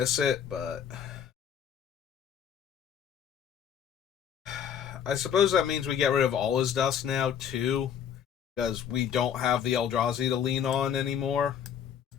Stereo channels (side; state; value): right; quieter; 8.4 dB